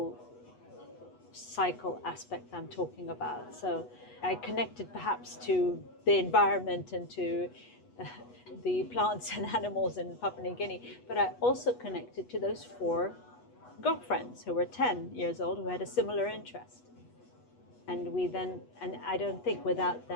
cycle aspect I'm talking about. So I connected perhaps to the environment and to the plants and animals in Papua New Guinea, but I also connected to those 4 girlfriends who were 10 years old who had a similar interest. And I don't think without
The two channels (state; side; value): late; right; 8.2 ms